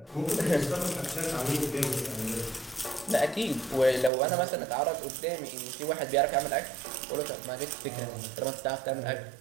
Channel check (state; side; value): drops out; left; at 4.1 s